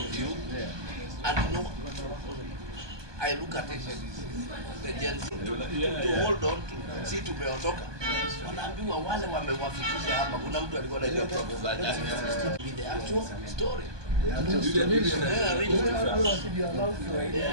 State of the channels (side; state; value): left; late; 1.2 ms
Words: you, and no, I look at it, the Gen Z, to hold on to, si tumeondoka, wanaambiwa wale wamewafikisha hapa, kuna mtu alikuwa anajua propaganda, with the actual story. Look